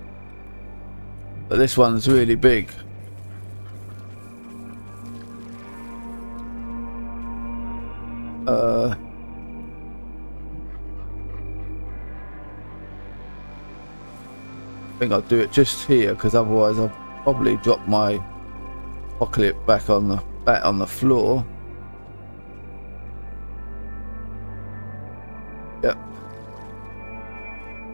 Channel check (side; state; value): both; inverted; correlation -1.00